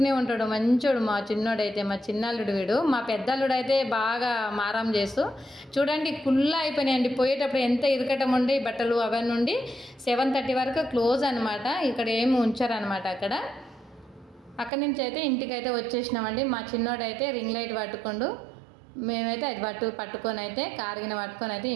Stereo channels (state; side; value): drops out; left; at 14.7 s